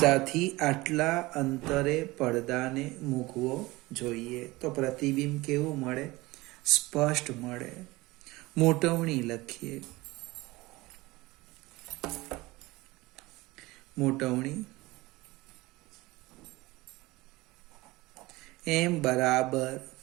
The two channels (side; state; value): left; quieter; 20.9 dB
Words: આટલા અંતરે પડદાને મૂકવો જોઈએ. તો પ્રતિબિંબ કેવું મળે? સ્પષ્ટ મળે. મોટવણી લખીએ. મોટવણી m બરાબર